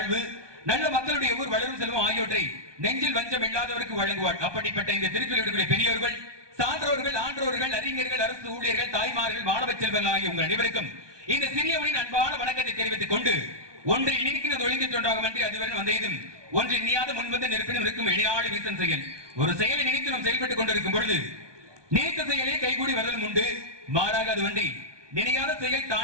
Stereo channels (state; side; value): late; left; 1.2 ms